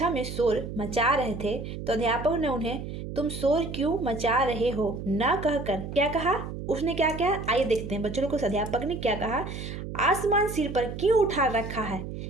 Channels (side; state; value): right; noise; hum, 8 dB below the sound